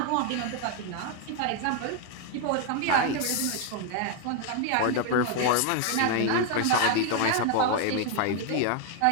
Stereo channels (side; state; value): both; different; correlation 0.01